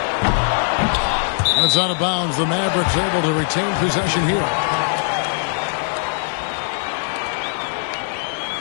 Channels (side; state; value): right; silent; digital silence